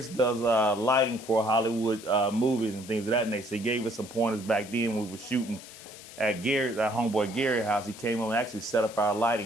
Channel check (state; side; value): noise; left; hiss, 17 dB below the sound